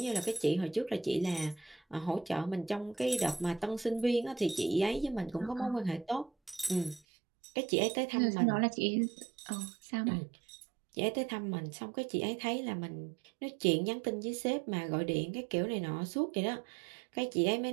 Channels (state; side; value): drops out; left; at 7.0 s